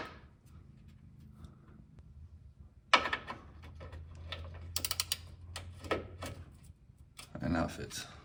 And now it fits.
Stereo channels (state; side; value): identical; both; correlation 1.00